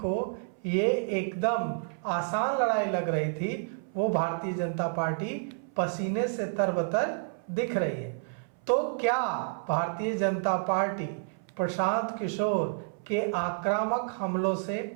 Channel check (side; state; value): left; silent; 58 dB below the other